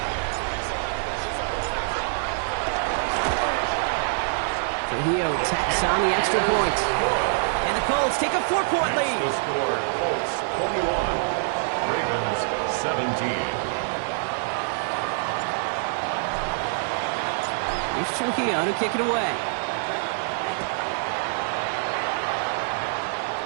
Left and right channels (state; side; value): silent; left; 62 dB below the other